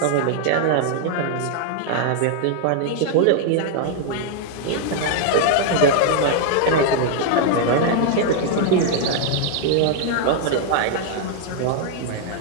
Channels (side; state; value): both; different; correlation 0.00